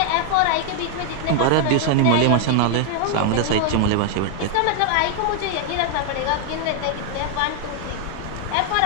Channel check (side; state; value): both; different; correlation 0.00